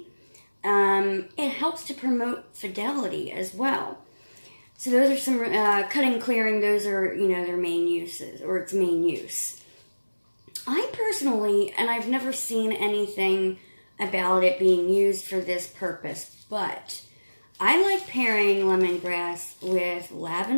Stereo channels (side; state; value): both; inverted; correlation -1.00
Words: It helps to promote fidelity as well. So those are some cutting, clearing. Those are their main uses, or its main use. I personally, and I've never seen anything about it being used for this purpose, but I like pairing lemongrass with